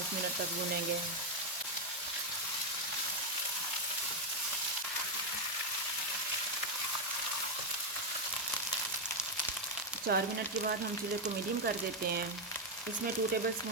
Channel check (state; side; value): normal; both; correlation 0.03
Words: मिनट तक भूनेंगे। 4 मिनट के बाद हम चूल्हे को मीडियम कर देते हैं। इसमें 2 टेबल